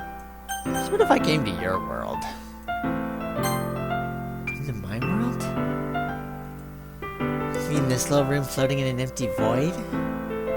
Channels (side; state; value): both; identical; correlation 1.00